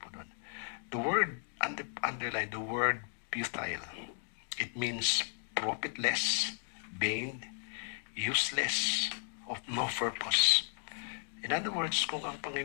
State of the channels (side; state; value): right; silent; 54 dB below the other